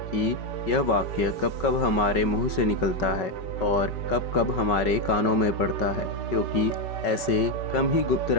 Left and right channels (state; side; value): late; right; 5.3 ms